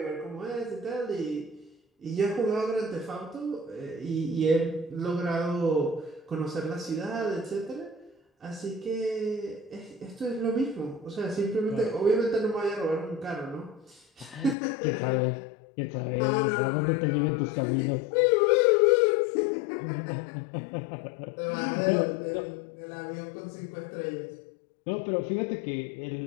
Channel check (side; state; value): right; drops out; at 14.6 s